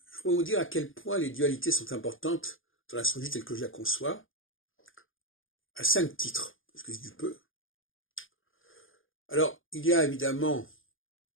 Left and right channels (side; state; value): right; late; 0.58 ms